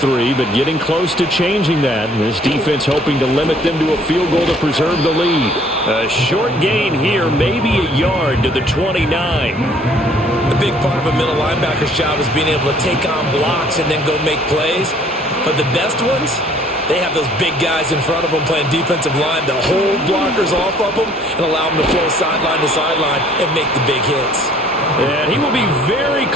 but getting close to changing that. And this defense hoping to limit them to a field goal to preserve the lead. A short gain here, maybe a yard to the 29. The big part of a middle linebacker's job is being able to take on blocks and then go make plays. But the best ones, they have those big guys in front of them playing defensive line to hold blockers off of them and allow them to flow sideline to sideline and make the big hits. And he will be very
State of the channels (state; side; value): normal; both; correlation 0.58